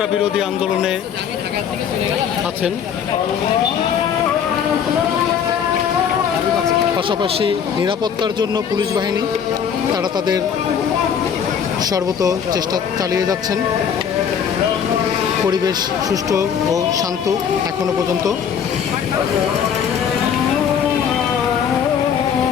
বিরোধী আন্দোলনে আছেন। পাশাপাশি নিরাপত্তার জন্য পুলিশ বাহিনী তারা তাদের সর্বত চেষ্টা চালিয়ে যাচ্ছেন। পরিবেশ সুষ্ঠু ও শান্ত এখনো পর্যন্ত।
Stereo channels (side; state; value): right; quieter; 7.8 dB